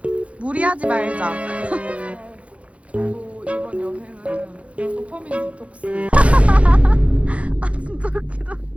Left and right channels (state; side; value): late; left; 0.063 ms